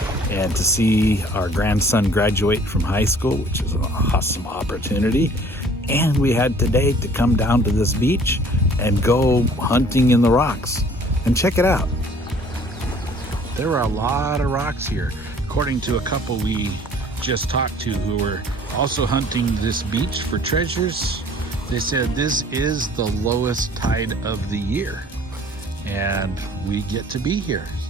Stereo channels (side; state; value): both; normal; correlation 0.54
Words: and to see our grandson graduate from high school, which is an awesome opportunity. And we had today to come down to this beach and go hunting in the rocks. And check it out. There are a lot of rocks here. According to a couple we just talked to who were also hunting this beach for treasures, they said this is the lowest tide of the year. And we get to be here.